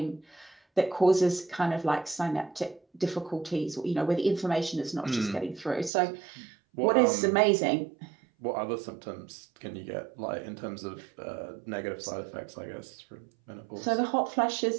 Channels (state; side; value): drops out; left; at 5.9 s